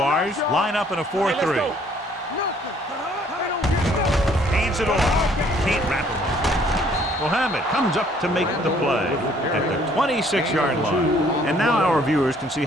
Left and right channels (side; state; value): both; normal; correlation 0.61